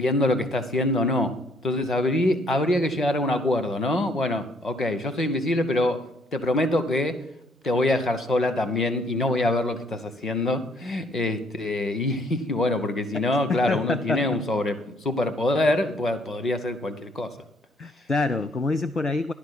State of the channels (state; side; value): normal; both; correlation 0.65